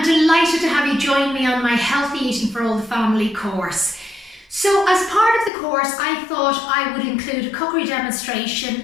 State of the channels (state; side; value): drops out; right; at 5.5 s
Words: delighted to have you join me on my Healthy Eating for All the Family course. So as part of the course, I thought I would include a cookery demonstration